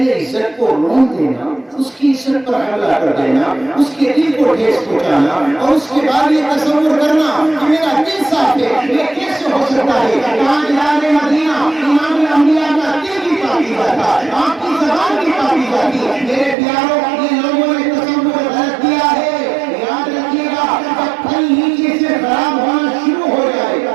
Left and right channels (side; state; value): left; drops out; at 16.6 s